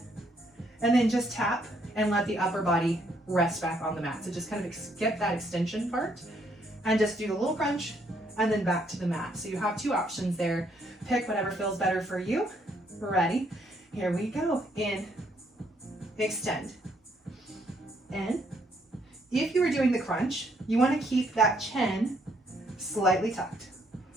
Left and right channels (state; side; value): normal; both; correlation 0.70